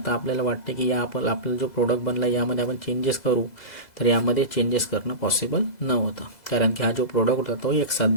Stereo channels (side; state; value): right; late; 2.0 ms